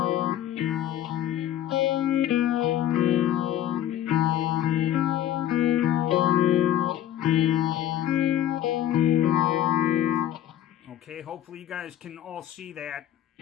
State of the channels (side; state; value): right; quieter; 11.6 dB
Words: Okay, hopefully you guys can all see that.